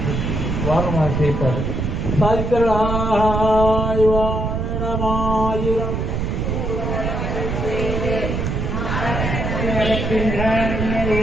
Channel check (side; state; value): right; noise; rumble, 1 dB below the sound